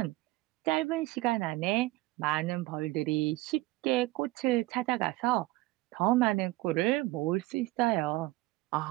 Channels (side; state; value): left; quieter; 19.9 dB